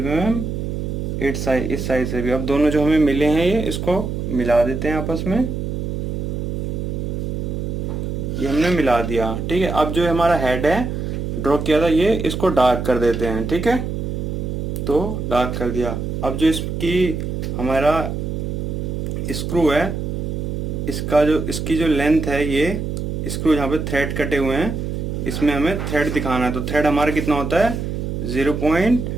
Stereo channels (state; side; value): noise; right; hum, 3 dB below the sound